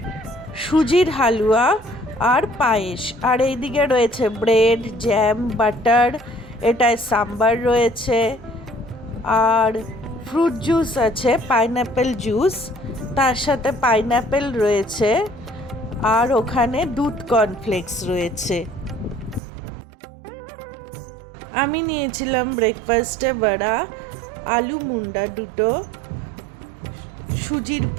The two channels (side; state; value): left; drops out; at 19.4 s